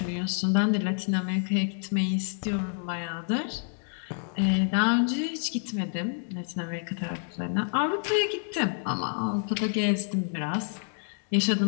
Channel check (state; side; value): silent; right; 56 dB below the other